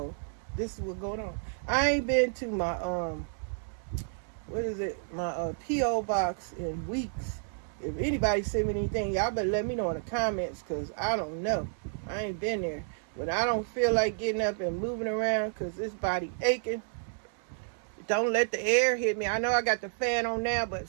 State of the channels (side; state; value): left; silent; 57 dB below the other